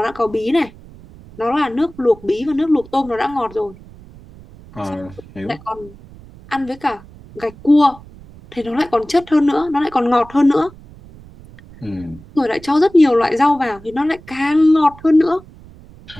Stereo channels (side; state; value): right; noise; rumble, 21 dB below the sound